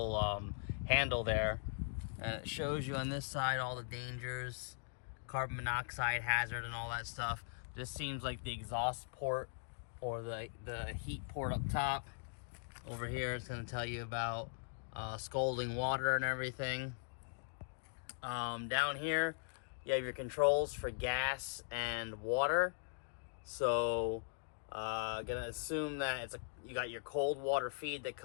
handle there. And it shows you on this side all the dangers, carbon monoxide hazard and all that stuff. This seems like the exhaust port or the heat port up top. Over here it's going to tell you about scalding water and everything. Down here you have your controls for gas and water. So gonna assume that you got your cold water feed that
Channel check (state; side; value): silent; right; digital silence